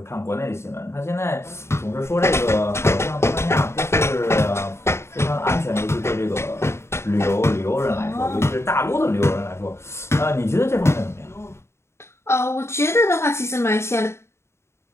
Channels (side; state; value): right; late; 0.13 ms